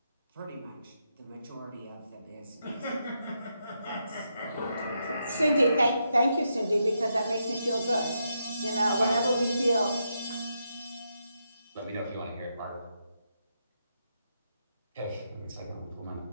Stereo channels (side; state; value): both; inverted; correlation -0.82